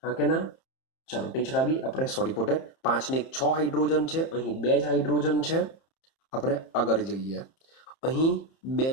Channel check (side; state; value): right; late; 30 ms